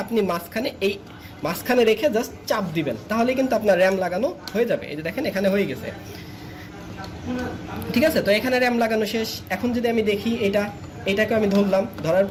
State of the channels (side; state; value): both; identical; correlation 1.00